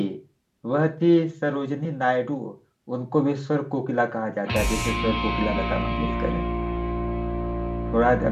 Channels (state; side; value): identical; both; correlation 1.00